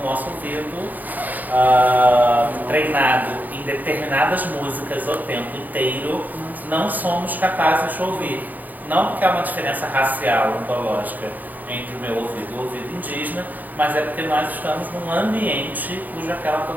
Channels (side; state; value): left; late; 0.083 ms